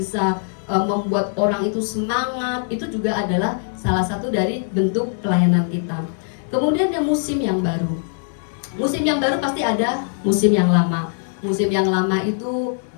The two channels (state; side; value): silent; right; 65 dB below the other